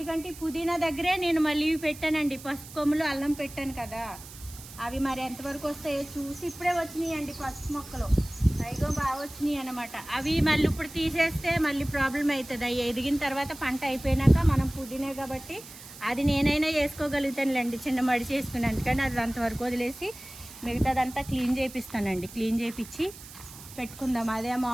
ఈ పుదీనా దగ్గరే నేను మళ్ళీ పెట్టానండి, పసుపు కొమ్ములు, అల్లం పెట్టాను కదా, అవి మరి ఎంతవరకు వస్తాయో చూసి ఇప్పుడే వచ్చినాయి అండి పసుపు మొక్కలు, పైగా బాగా వచ్చినాయి అన్నమాట. అవి మళ్ళీ ఇప్పుడు తీసేస్తే మళ్ళీ ప్రాబ్లం అవుతుంది. అవి ఎదిగిన తర్వాత పంట అయిపోయినాక మనం పుదీనా కాబట్టి అది నేనైనా వేసుకోగలుగుతానులేండి, చిన్న మడి చేసుకుని. అందుకని అది అంతవరకు వదిలేసి మిగతాదంతా క్లీన్ చేపిస్తానండి. క్లీన్ చేపించి పెట్టుకుందాం. అదే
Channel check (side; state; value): right; noise; hiss, 16 dB below the sound